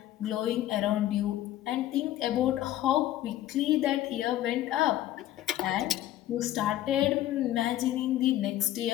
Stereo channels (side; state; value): right; quieter; 13.6 dB